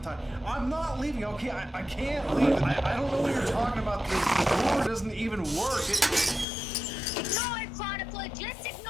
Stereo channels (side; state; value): right; drops out; at 6.5 s